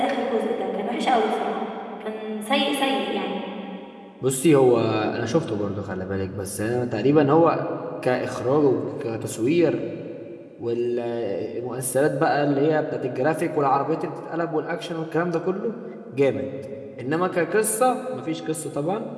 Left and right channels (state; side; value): identical; both; correlation 1.00